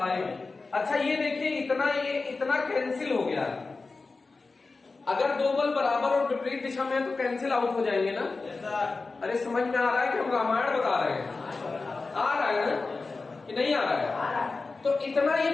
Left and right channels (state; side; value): quieter; right; 3.9 dB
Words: अच्छा ये देखिए, ये इतना कैंसिल हो गया। अगर दो बल बराबर और विपरीत दिशा में है तो कैंसिल आउट हो जाएंगे ना। अरे समझ में आ रहा है कि हम रामायण बता रहे हैं? आ रहा है ना कि नहीं आ रहा है? तो इतना ये